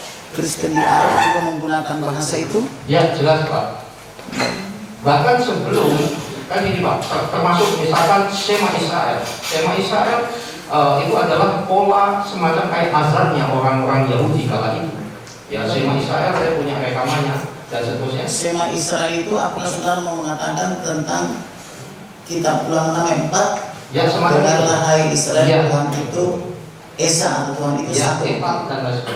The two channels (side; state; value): both; identical; correlation 1.00